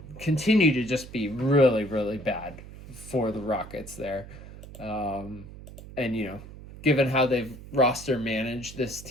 continue to just be really, really bad for the Rockets there. And, given how they've roster managed this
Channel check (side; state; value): right; noise; hum, 15 dB below the sound